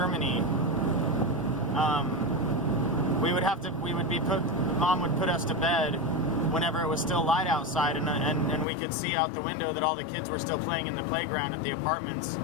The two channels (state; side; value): drops out; right; at 8.7 s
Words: Mom would put us to bed whenever it was still light outside, and we could see out the window that all the kids were still playing in the playground at the apartments.